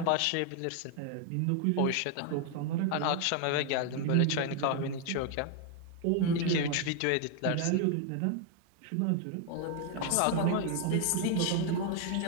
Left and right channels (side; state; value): both; different; correlation 0.00